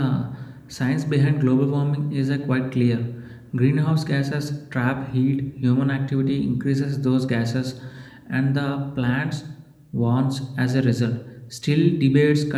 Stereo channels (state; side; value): identical; both; correlation 1.00